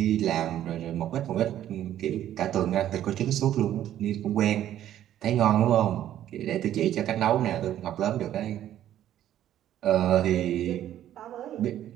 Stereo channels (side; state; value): left; quieter; 11.8 dB